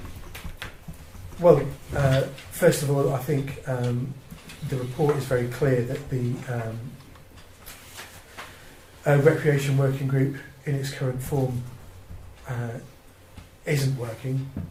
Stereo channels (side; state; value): both; identical; correlation 1.00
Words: Well, first of all, I think the report is very clear that the recreation working group in its current form isn't working.